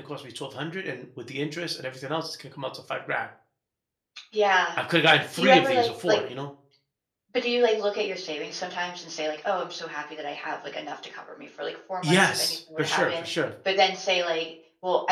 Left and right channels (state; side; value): identical; both; correlation 1.00